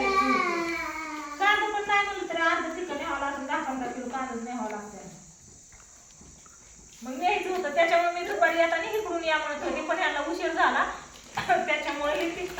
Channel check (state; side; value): identical; both; correlation 1.00